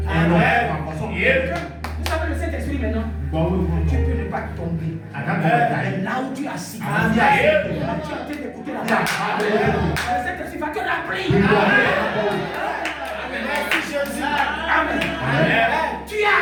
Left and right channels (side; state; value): both; identical; correlation 1.00